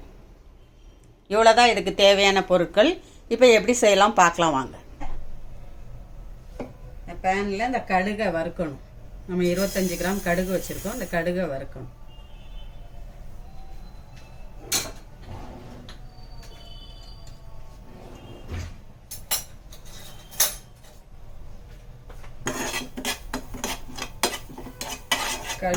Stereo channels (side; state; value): both; identical; correlation 1.00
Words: இவ்வளோதான் இதுக்கு தேவையான பொருட்கள். இப்போ எப்படி செய்யலாம் பார்க்கலாம் வாங்க. இந்த பேனில் இந்த கடுகை வறுக்கணும். நம்ம 25 கிராம் கடுகு வச்சுருக்கோம். இந்த கடுகை வறுக்கணும்.